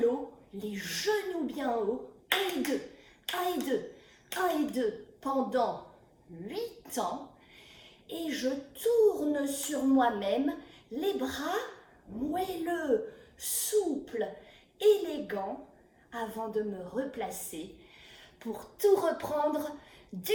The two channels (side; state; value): both; identical; correlation 1.00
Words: les genoux bien hauts, 1 et 2, 1 et 2, 1 et 2, pendant 8 ans. Et je tourne sur moi-même, les bras moelleux, souples, élégants, avant de me replacer pour tout reprendre du